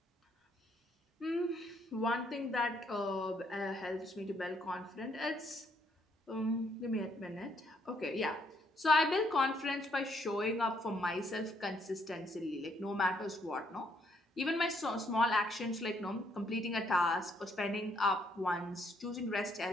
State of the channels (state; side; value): normal; both; correlation 0.71